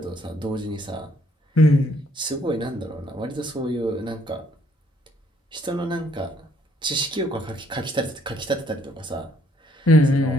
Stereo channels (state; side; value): normal; both; correlation 0.67